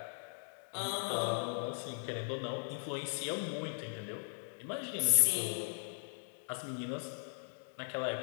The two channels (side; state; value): right; silent; digital silence